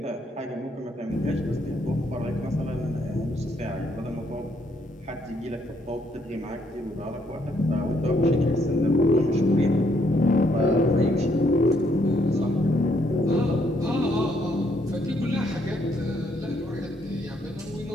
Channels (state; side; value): normal; both; correlation 0.71